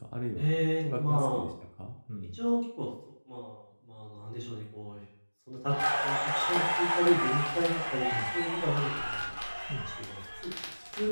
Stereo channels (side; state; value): both; inverted; correlation -1.00